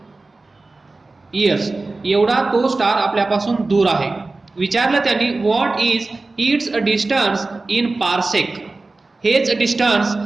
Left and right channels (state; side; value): quieter; left; 3.4 dB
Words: इयर्स एवढा तो स्टार आपल्यापासून दूर आहे. विचारलं त्यांनी what is it's distance in parsec. हेच डिस्टन्स